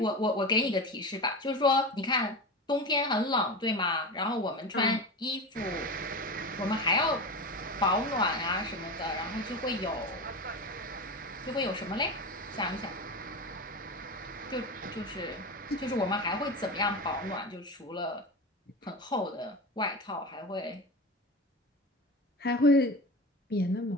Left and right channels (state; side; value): normal; both; correlation 0.24